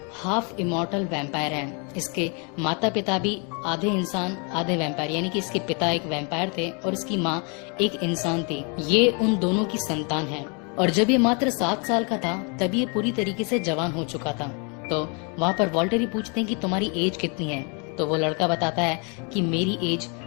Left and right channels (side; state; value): right; quieter; 34.7 dB